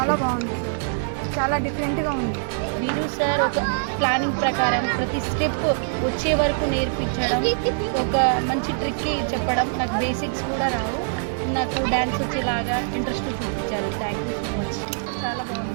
బాగుంది, చాలా డిఫరెంట్గా ఉంది. వీరు సార్ ఒక ప్లానింగ్ ప్రకారం ప్రతి స్టెప్ వచ్చే వరకు నేర్పించడం, ఒక మంచి ట్రిక్ చెప్పడం. నాకు బేసిక్స్ కూడా రావు, నాకు డ్యాన్స్ వచ్చేలాగా ఇంట్రెస్ట్ చూపించారు. Thank you so much. చాలా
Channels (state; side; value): silent; left; digital silence